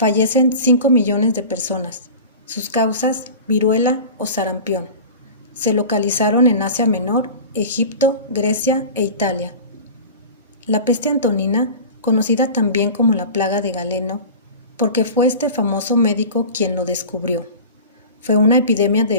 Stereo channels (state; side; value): inverted; both; correlation -0.35